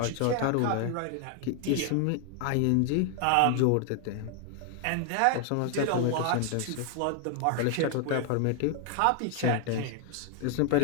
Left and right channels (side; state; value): both; different; correlation 0.00